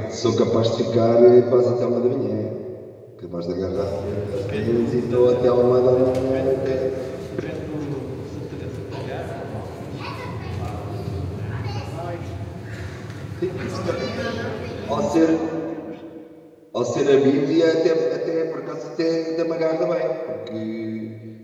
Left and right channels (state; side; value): identical; both; correlation 1.00